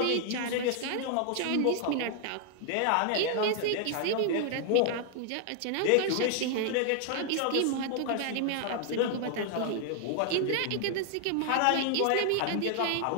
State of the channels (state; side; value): different; both; correlation 0.00